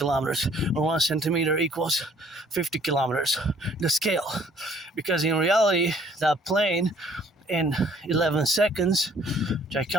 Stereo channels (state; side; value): normal; both; correlation 0.59